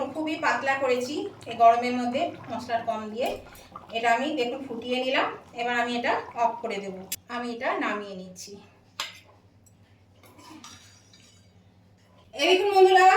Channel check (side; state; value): both; identical; correlation 1.00